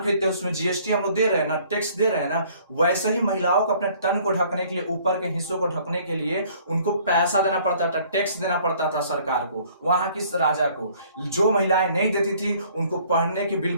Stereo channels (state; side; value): inverted; both; correlation -0.58